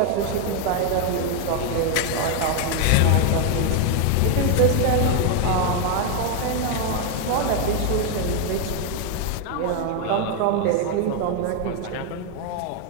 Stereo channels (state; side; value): different; both; correlation 0.01